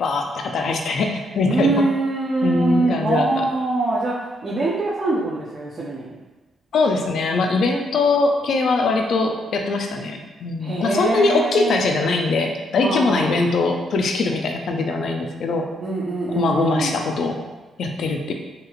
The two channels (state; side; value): normal; both; correlation 0.74